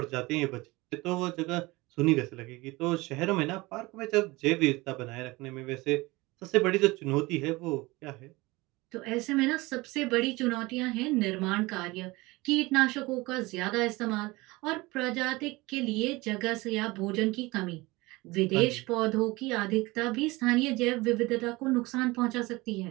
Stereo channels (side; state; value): left; quieter; 22.1 dB